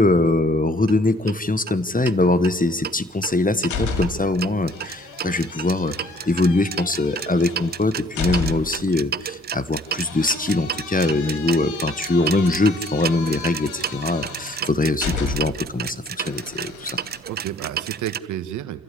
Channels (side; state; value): both; normal; correlation 0.59